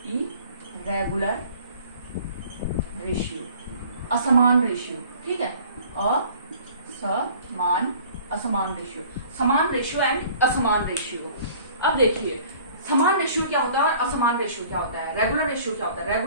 इरेगुलर रेशियो, असमान रेशियो, ठीक है। असमान रेशियो, समान रेशियो एंड असमान रेशियो। अब देखिए, समान रेशियो क्या होता है और असमान रेशियो क्या होता है। रेगुलर रेशियो क्या होता है।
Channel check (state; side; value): inverted; both; correlation -0.51